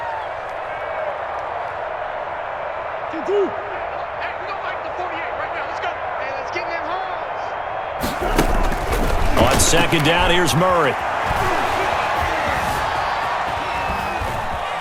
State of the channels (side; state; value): both; identical; correlation 1.00